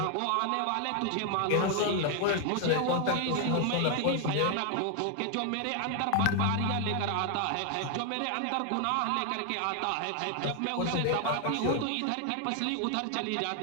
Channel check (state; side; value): different; both; correlation 0.01